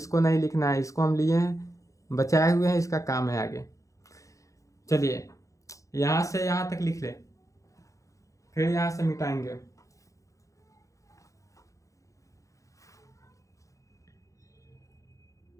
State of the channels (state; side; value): late; right; 0.16 ms